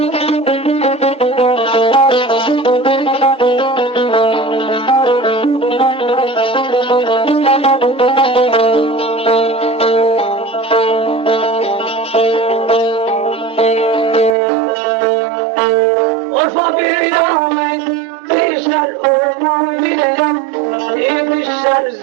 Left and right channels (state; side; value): drops out; left; at 14.4 s